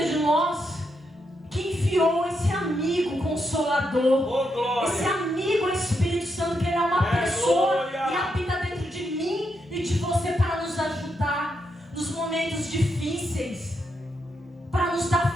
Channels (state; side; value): normal; both; correlation 0.81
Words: de nós, que enviou esse amigo consolador, esse amigo Espírito Santo, que Ele é uma pessoa e habita dentro de mim e de você para nos ajudar nos momentos difíceis, para nos